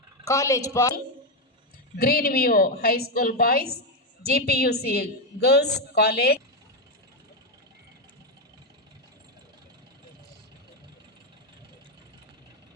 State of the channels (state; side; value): normal; both; correlation 0.06